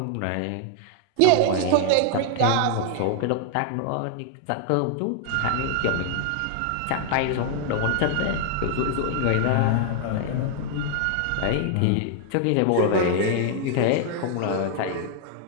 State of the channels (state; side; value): different; both; correlation 0.00